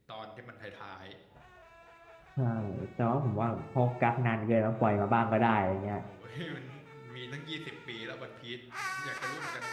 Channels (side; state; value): both; identical; correlation 1.00